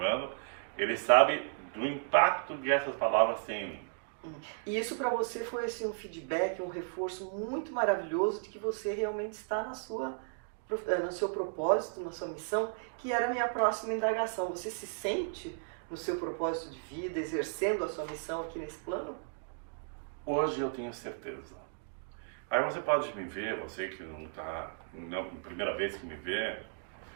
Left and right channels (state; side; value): silent; left; digital silence